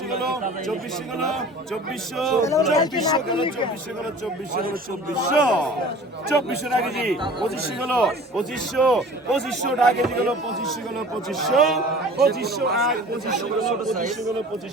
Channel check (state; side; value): normal; both; correlation 0.44